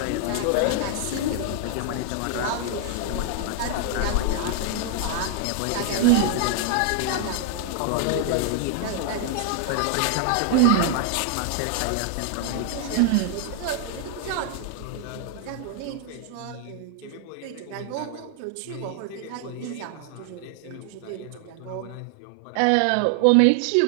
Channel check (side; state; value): both; different; correlation 0.00